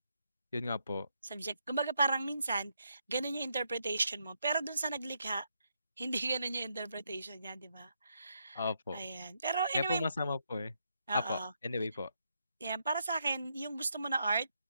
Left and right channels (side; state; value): both; inverted; correlation -0.78